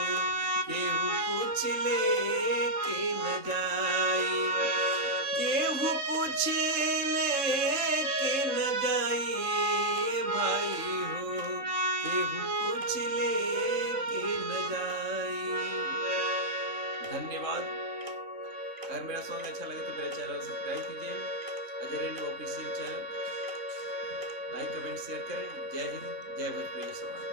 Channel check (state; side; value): late; left; 3.6 ms